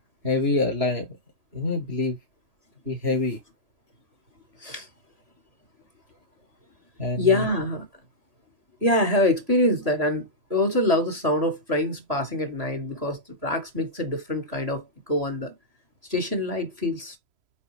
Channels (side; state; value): left; late; 3.0 ms